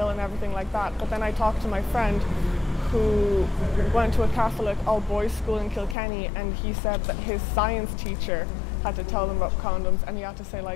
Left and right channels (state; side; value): drops out; right; at 6.0 s